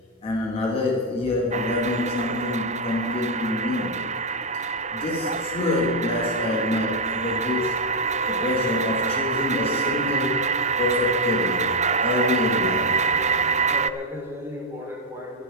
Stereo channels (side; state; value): both; normal; correlation 0.00